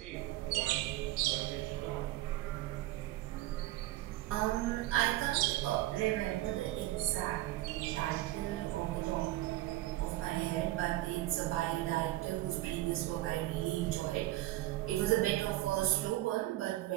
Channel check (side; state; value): left; quieter; 16.3 dB